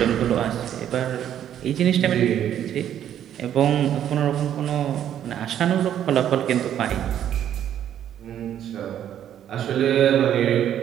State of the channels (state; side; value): quieter; left; 10.4 dB